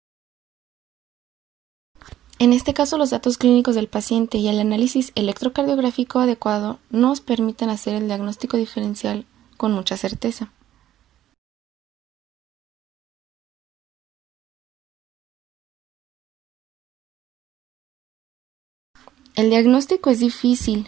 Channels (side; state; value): left; quieter; 12.4 dB